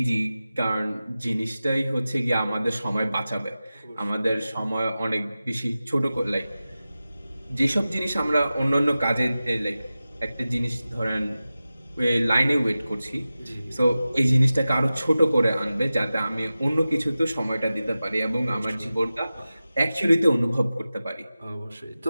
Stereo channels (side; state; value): both; inverted; correlation -0.95